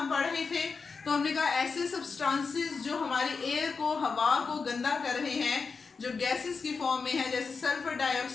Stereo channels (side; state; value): right; quieter; 4.9 dB